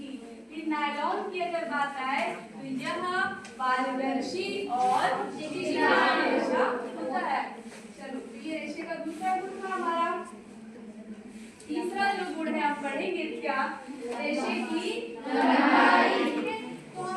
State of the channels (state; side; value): identical; both; correlation 1.00